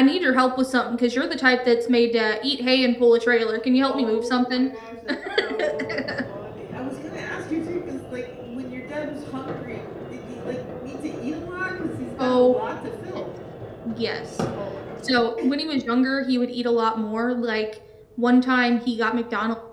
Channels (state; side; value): identical; both; correlation 1.00